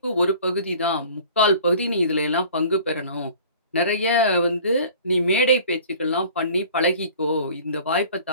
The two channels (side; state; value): both; inverted; correlation -0.47